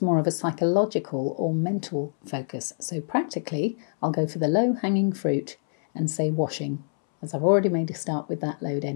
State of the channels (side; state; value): right; silent; 61 dB below the other